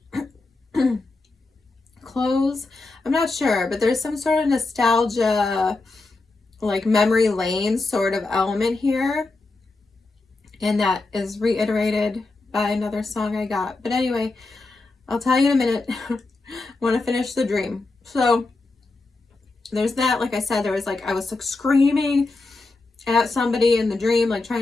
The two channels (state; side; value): quieter; right; 3.4 dB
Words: clothes, I'm not sure, but there's some sort of nostalgia, like memory lane sort of element here, and that is reiterated by another song I got. But anyway, I'll tell you in a minute. Want to finish the dream. So there's that. Like I said, there was like, I was like screaming at somebody in the dream, like